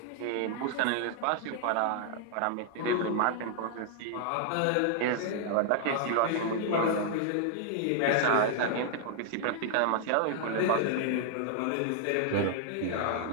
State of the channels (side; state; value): both; different; correlation 0.00